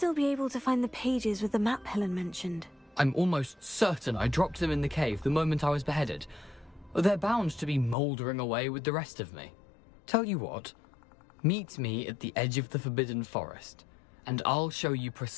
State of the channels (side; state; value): right; drops out; at 8.0 s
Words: be able to find the pages with the map Helen mentioned? I'm almost certain I dropped them in the cave the moment I was beheaded. They're bound to be mouldering away with the rest of me. Tell you what, Meet me at the edge of the Forbidden Forest, and I'll show you